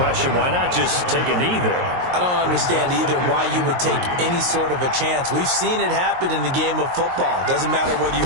why not just take a knee there? I don't understand either why you would take any sort of a chance. We've seen it happen in the game of football. Doesn't matter whether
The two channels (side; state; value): left; late; 22 ms